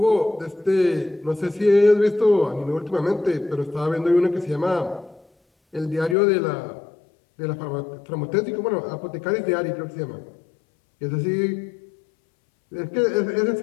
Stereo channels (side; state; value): right; drops out; at 6.2 s